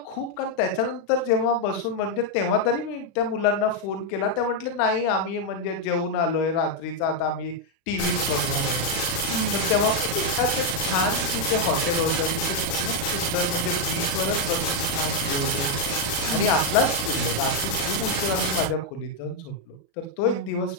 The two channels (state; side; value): late; right; 36 ms